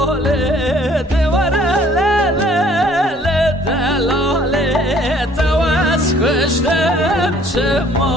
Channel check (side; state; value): both; normal; correlation 0.58